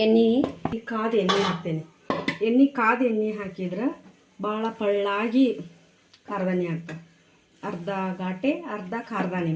ಎಣ್ಣೆ, ಕಾದ ಎಣ್ಣೆ ಹಾಕ್ತೇನೆ. ಕಾದ ಎಣ್ಣೆ ಹಾಕಿದ್ರೆ ಭಾಳ ಪಳ್ಳಾಗಿ ಕಾರ್ದಾನಿ ಆಗ್ತದೆ. ಅರ್ಧ ಘಾಟೆ ಅರ್ಧ ಕಾರ್ದಾನಿ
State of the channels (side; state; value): both; identical; correlation 1.00